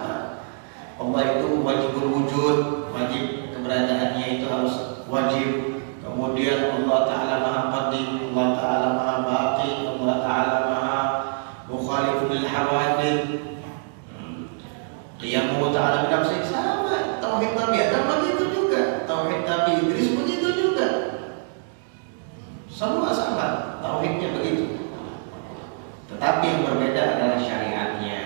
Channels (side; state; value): left; silent; 62 dB below the other